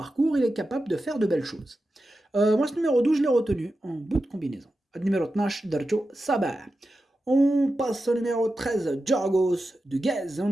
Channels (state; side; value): normal; both; correlation 0.91